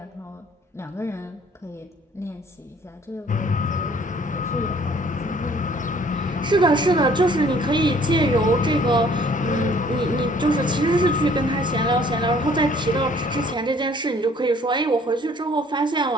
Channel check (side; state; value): both; normal; correlation 0.57